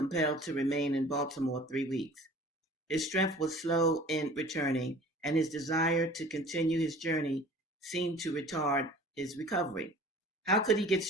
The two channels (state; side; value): normal; both; correlation 0.46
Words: to remain in Baltimore 3 weeks. His strength was slow in returning, and his desire to continue his journey seemed to retard his recovery. How could he get